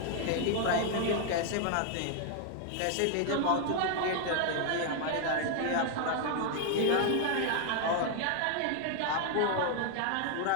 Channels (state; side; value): different; both; correlation 0.00